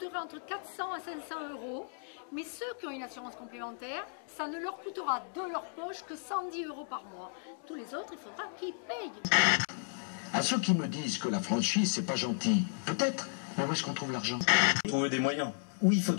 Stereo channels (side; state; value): right; silent; digital silence